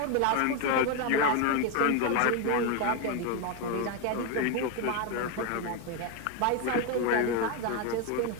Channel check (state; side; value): different; both; correlation 0.01